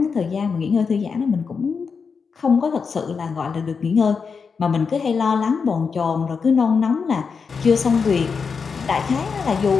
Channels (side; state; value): right; quieter; 5.5 dB